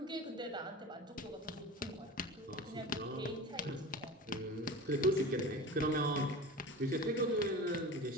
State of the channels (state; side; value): normal; both; correlation 0.33